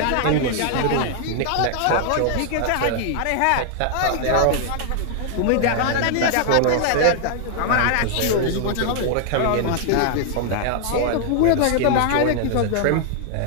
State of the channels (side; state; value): both; different; correlation 0.00